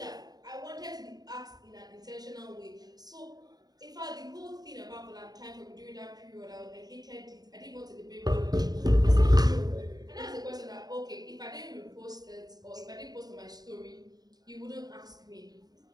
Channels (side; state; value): left; late; 0.19 ms